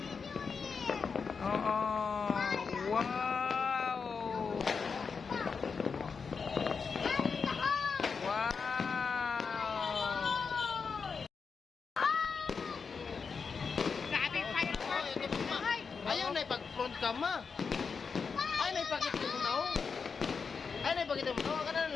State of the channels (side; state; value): right; quieter; 5.4 dB